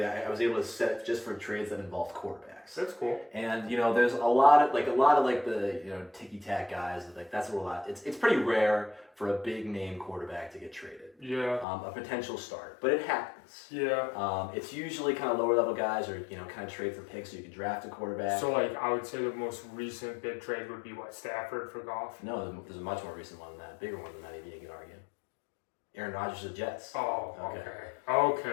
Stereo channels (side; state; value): right; drops out; at 11.7 s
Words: I was able to set it just for trades that involved quarterbacks. That's cool. And there's a lot of the ticky tack guys that's a lot. It's pretty rare for a big name quarterback to get traded. Yeah. A potential start, but it happens. Yeah. It's usually kind of lower level guys or kind of trade for picks so you can draft a quarterback. So I would say the most recent big trade would be Stafford for Goff. No, there's a much more recent one than that, bigger one than that. Even you can argue. Aaron Rodgers to the Jets. Oh,